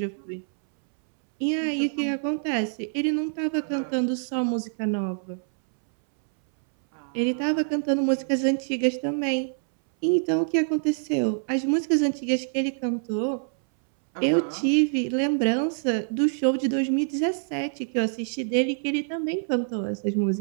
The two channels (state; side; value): silent; left; 61 dB below the other